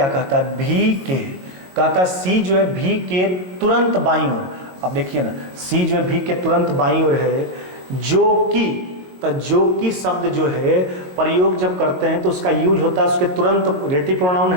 कहता है, भी के, कहता सी जो है भी के तुरंत बाईं ओर। अब देखिए ना, सी जो है भी के तुरंत बाईं ओर है, जो कि, तो जो कि शब्द जो है प्रयोग जब करते हैं तो उसका यूज होता है उसके तुरंत, रेटिव प्रोनाउन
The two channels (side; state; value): left; late; 22 ms